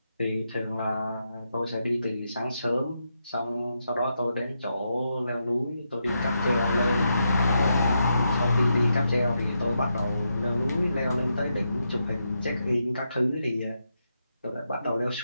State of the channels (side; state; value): both; inverted; correlation -0.83